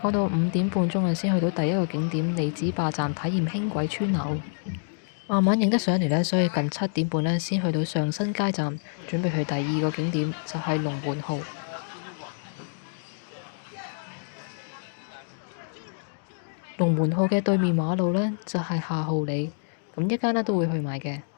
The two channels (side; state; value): right; silent; digital silence